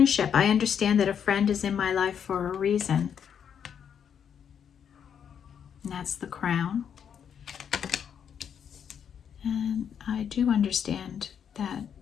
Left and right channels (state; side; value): quieter; right; 8.1 dB